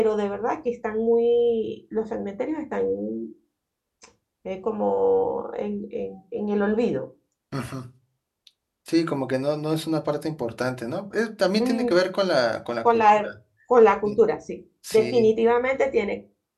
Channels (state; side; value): identical; both; correlation 1.00